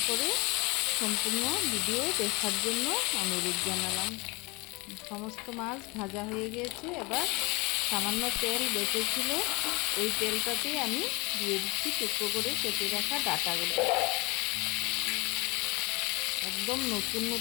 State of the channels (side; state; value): right; quieter; 26.2 dB